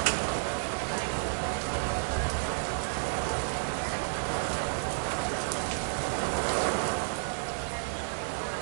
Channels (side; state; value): left; silent; digital silence